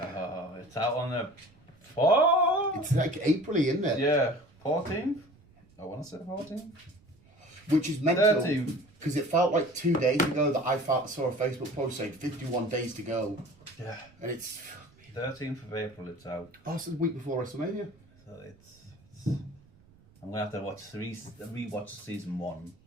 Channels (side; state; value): right; noise; rumble, 28 dB below the sound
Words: It's out on the 4th? It's like April-y, isn't it? Yeah, 14th? I want to say 14th. Which is mental. 13th. Because it felt like 2 days ago that I saw a Facebook post saying 51 days to go. Yeah. And it's... 13th of April it's out. Oh, it's the week before WrestleMania. So it's I'm going to have to rewatch season 1